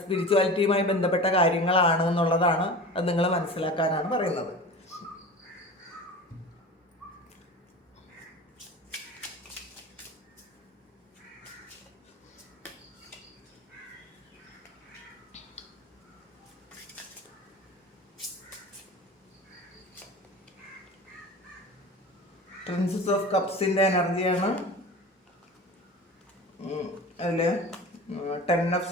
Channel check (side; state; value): both; normal; correlation 0.35